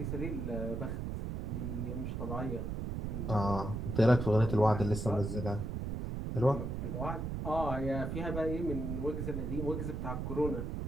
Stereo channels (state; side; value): noise; right; rumble, 3 dB below the sound